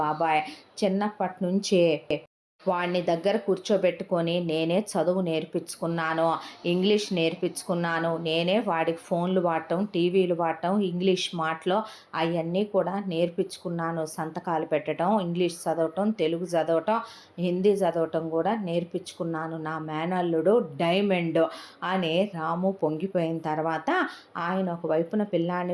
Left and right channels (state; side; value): identical; both; correlation 1.00